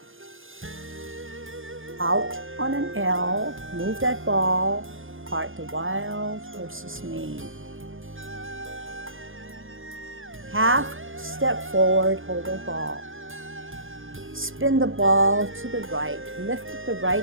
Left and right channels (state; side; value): late; left; 0.59 ms